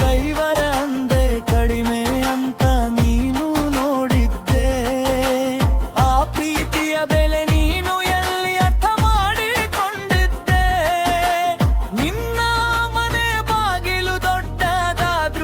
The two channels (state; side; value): identical; both; correlation 1.00